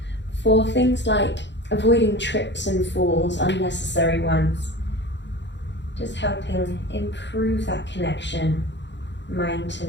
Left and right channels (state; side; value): late; right; 0.52 ms